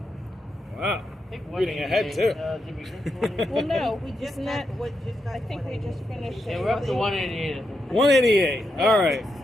Wow. Reading ahead too. Well, no, we just not. I think we just finished. Yeah, we're up to 188. 188. All right.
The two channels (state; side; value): normal; both; correlation 0.84